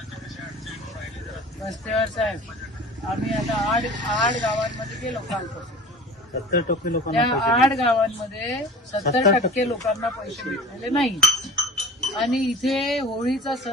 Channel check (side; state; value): both; normal; correlation 0.41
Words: रस्त्यावर साहेब, आम्ही आता आठ गावांमध्ये गेलो कालपासून. 70% त्या लोकांना 8 गावांमध्ये 70% लोकांना पैसे भेटलेले नाही. आणि इथे होळीचा